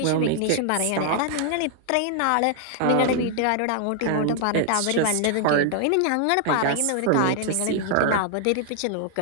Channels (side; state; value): both; different; correlation 0.00